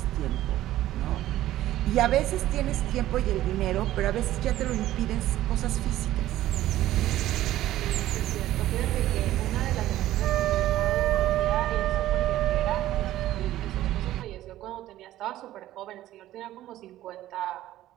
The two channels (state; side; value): quieter; left; 14.3 dB